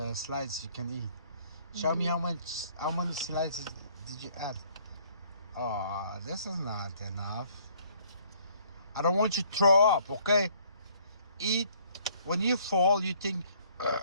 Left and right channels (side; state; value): both; inverted; correlation -0.61